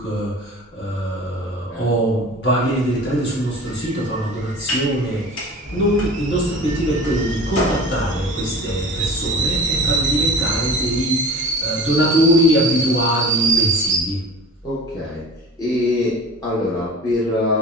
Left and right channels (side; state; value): both; normal; correlation 0.38